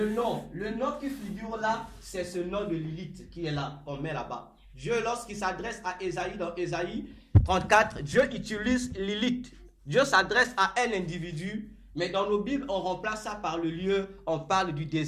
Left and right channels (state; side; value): identical; both; correlation 1.00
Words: nom. Le nom qui figure là, c'est ce nom de Lilith qui est là, qu'on met là-bas. Dieu, lorsqu'il s'adresse à Ésaïe, dans Ésaïe 34, Dieu utilise Lilith. Dieu s'adresse à un individu, mais dans nos Bibles, on remplace ça par le lieu, on parle du